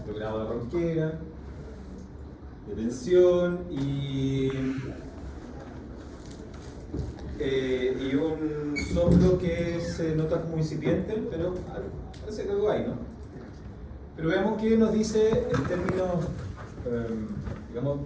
grados de ronquera, de tensión y un soplo que se nota como incipiente, pero parece que algo hay, ¿no? Pero veamos qué nos dice en términos, digamos,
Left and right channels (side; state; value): both; identical; correlation 1.00